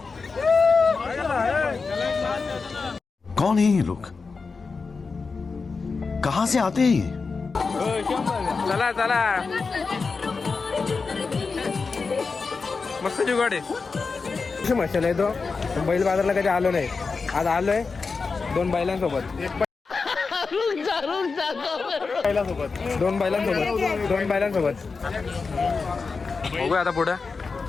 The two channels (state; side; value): quieter; right; 4.6 dB